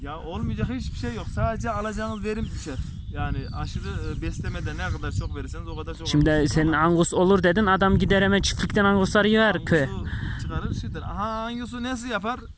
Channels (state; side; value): identical; both; correlation 1.00